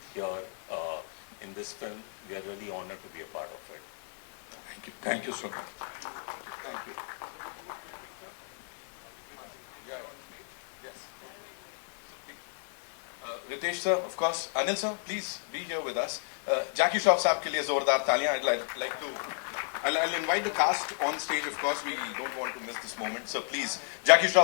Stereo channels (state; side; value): silent; right; 55 dB below the other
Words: here in this film, we are really honored to be a part of it. Thank you so much. Thank you. Yes. Ritesh sir, of course. Anil sir, please be here with us. Jackie Shroff साहब के लिए जोरदार तालियां. I'll invite the cast on stage. Of course, we don't want to miss this moment. So please, Jackie